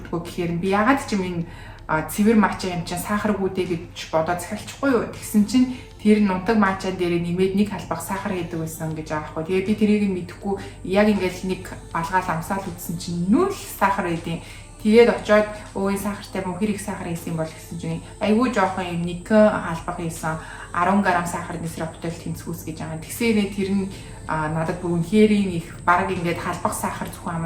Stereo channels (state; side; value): identical; both; correlation 1.00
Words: гэхээр би ягаад ч юм энэ цэвэр матчаа юм чинь сахаргүй дээ гэж бодоод захиалчихгүй юу. Тэгсэн чинь тэр нунтаг матчаан дээр нэмээд нэг халбах сахар гэдэг байсан гэж байгаа хгүй. Тэгээ би тэрийг мэдэхгүй яг ингээл нэг балгаал амсаал үзсэн чинь нүл сахар байдیں۔ Тэгээд очиод өө энэ сахартай мөн хэрэг сахар хийсэн бол гэсэн чинь айгүй жоохон юм нэг халбах хийсэн 10 г сахарны сироптой тэнцвүүс гэж байгаа. Тэгсээрээ тэр нь надад бүр үнэхээр их баг ингээд халбах сахар зөвхөн